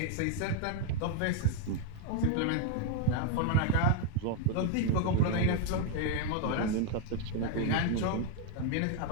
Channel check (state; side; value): different; both; correlation 0.01